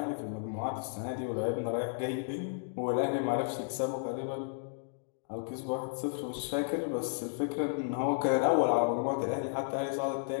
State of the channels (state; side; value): silent; right; digital silence